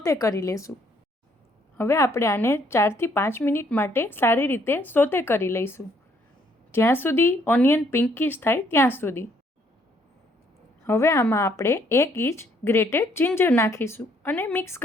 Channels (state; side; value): normal; both; correlation 0.67